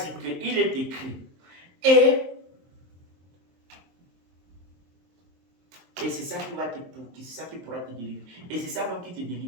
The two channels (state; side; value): late; left; 23 ms